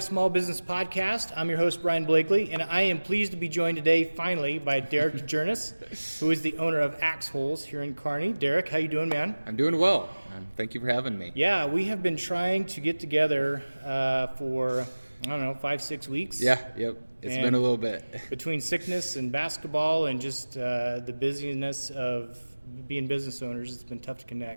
Small Business Podcast. I'm your host, Brian Blakely, and I am pleased to be joined today, finally, by Derek Djernes, who is the owner of Axe Holes here in Kearney. Derek, how you doing, man? I'm doing well. Thank you for having me. Yeah, we have been trying to get together for, 5-6 weeks. Yep. It's been a little bit. Between sickness and basketball and just the busyness of being business owners, it's been tough to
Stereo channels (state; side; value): inverted; both; correlation -1.00